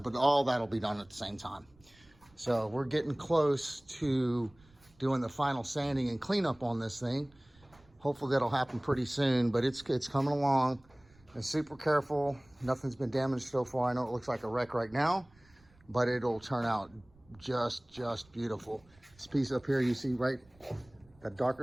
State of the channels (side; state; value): right; noise; rumble, 29 dB below the sound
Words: But all that'll be done at the same time. So we're getting close to doing the final sanding and cleanup on this thing. Hopefully that'll happen pretty soon, but it's coming along. And super careful. Nothing's been damaged so far. I know it looks like a wreck right now, but it'll turn out just beautiful. This piece up here, you see right, that darker